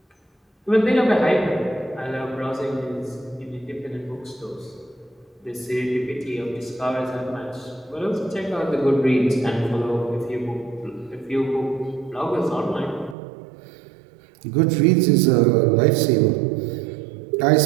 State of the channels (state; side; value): drops out; left; at 13.2 s